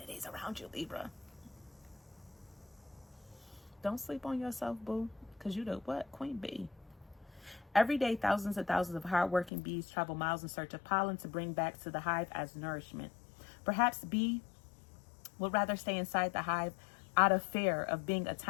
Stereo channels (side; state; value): right; drops out; at 9.5 s